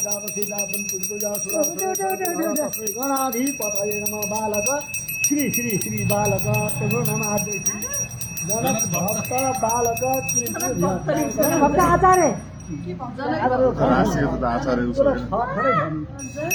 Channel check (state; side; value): identical; both; correlation 1.00